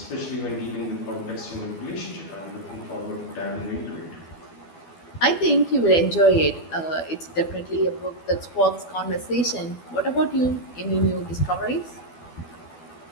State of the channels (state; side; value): late; right; 12 ms